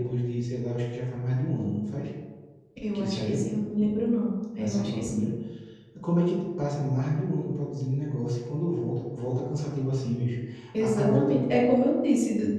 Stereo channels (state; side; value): identical; both; correlation 1.00